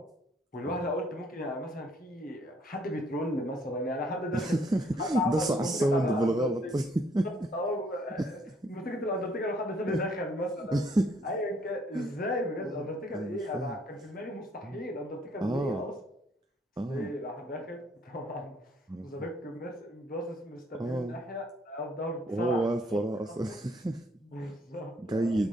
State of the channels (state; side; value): normal; both; correlation 0.66